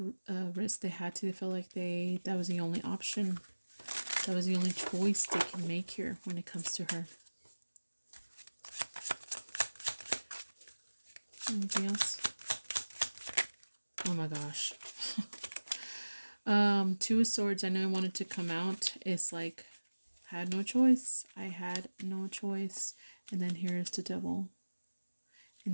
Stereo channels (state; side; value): inverted; both; correlation -1.00